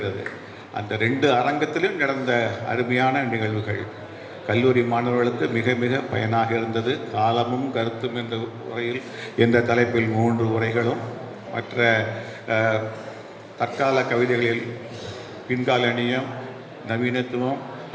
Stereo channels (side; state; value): both; identical; correlation 1.00